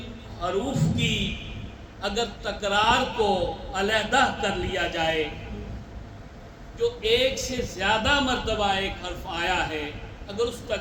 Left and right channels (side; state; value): both; identical; correlation 1.00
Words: حروف کی اگر تکرار کو علیحدہ کر لیا جائے، جو ایک سے زیادہ مرتبہ ایک حرف آیا ہے، اگر اس